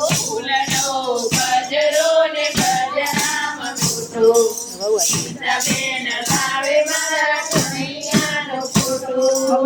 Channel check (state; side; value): identical; both; correlation 1.00